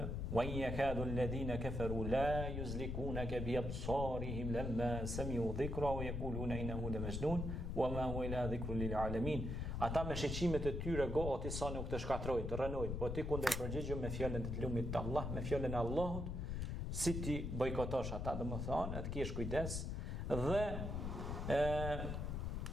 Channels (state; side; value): noise; left; rumble, 2 dB below the sound